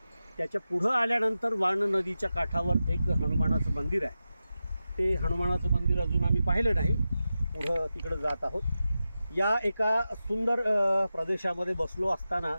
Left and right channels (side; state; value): both; inverted; correlation -0.92